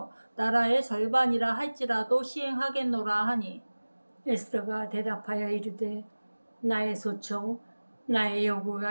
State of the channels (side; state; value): both; inverted; correlation -1.00